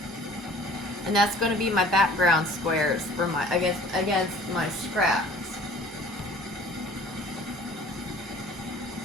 And that's going to be my background squares for my against my scraps.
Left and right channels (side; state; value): both; normal; correlation 0.49